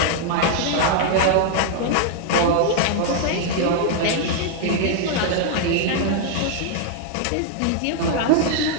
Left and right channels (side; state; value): both; different; correlation 0.00